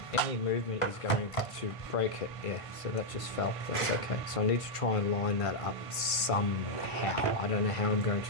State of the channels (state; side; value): late; right; 1.5 ms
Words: any movement is going to break it. Yeah, so that just fell. That's okay. So I need to try and line that up somehow. I don't know how I'm going